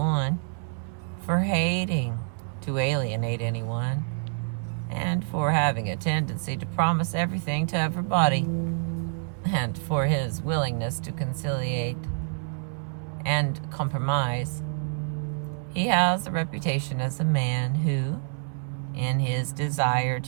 for hating to alienate anyone, and for having a tendency to promise everything to everybody, and for his willingness to conciliate and compromise. He has a reputation as a man who, in his desire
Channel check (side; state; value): left; silent; 60 dB below the other